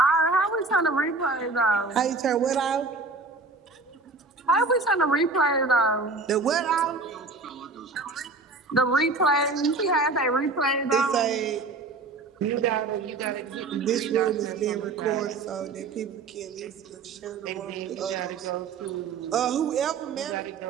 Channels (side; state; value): left; quieter; 3.8 dB